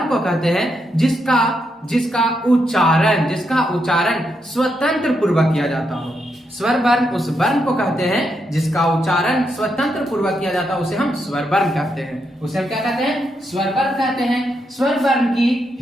को कहते हैं जिसका उच्चारण स्वतंत्र पूर्वक किया जाता हो। स्वर वर्ण उस वर्ण को कहते हैं जिसका उच्चारण स्वतंत्र पूर्वक किया जाता है, उसे हम स्वर वर्ण कहते हैं। उसे हम क्या कहते हैं? स्वर वर्ण कहते हैं। स्वर वर्ण की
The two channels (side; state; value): both; normal; correlation 0.81